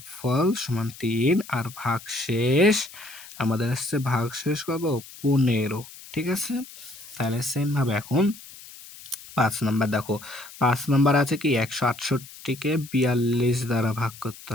সমান ৩ আর ভাগশেষ আমাদের আসছে ভাগশেষ কত? ১৫, ঠিক আছে? তাহলে সেম ভাবে এখন ৫ নাম্বার দেখো। ৫ নাম্বার আছে কি ১৬৮কে ৪২ দ্বারা ভাগ করতে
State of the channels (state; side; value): noise; left; hiss, 17 dB below the sound